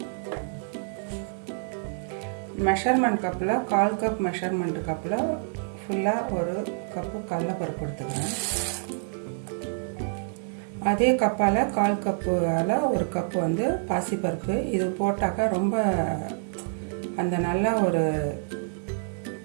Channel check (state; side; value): silent; left; 60 dB below the other